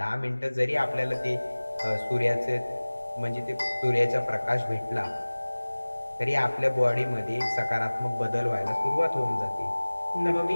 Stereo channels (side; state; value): both; inverted; correlation -1.00